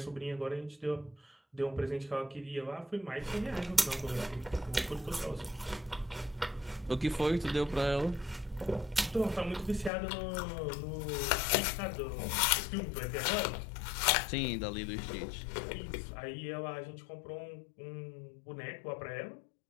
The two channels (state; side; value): drops out; right; at 9.9 s